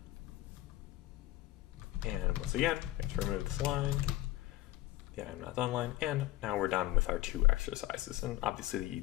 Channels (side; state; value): right; quieter; 16.6 dB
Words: And once again, we have to remove this line, the I'm not done line, and now we're done with our 2 exercises. And obviously